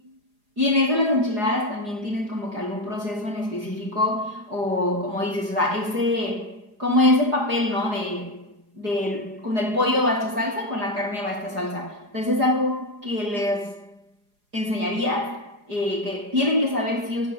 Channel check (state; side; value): late; left; 4.8 ms